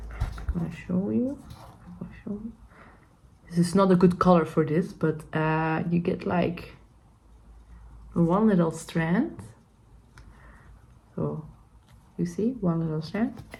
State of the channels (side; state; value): both; identical; correlation 1.00